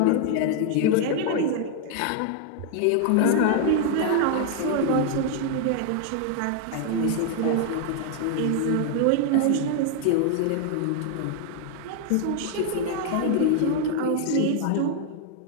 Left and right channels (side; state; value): both; different; correlation 0.00